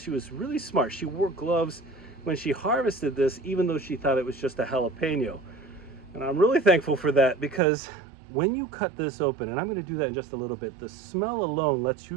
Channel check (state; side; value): drops out; left; at 7.6 s